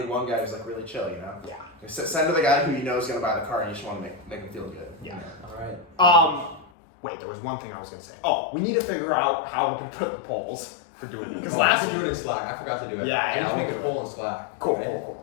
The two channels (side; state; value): right; drops out; at 6.7 s